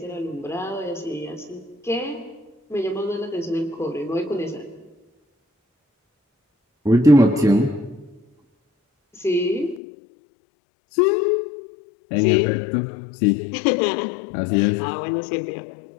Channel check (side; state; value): right; drops out; at 9.8 s